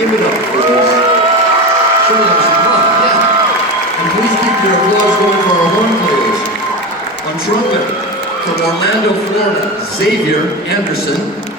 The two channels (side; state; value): both; normal; correlation 0.22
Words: give it up for us. Show them some love, yeah. And please keep your applause going for our horn players. On trumpet, from Orlando, Florida, Xavier Anderson.